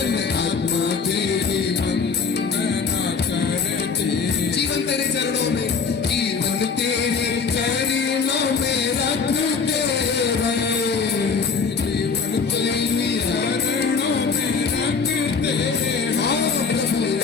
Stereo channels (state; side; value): quieter; right; 5.4 dB